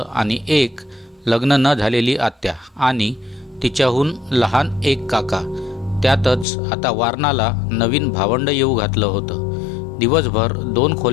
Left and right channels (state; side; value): drops out; right; at 6.5 s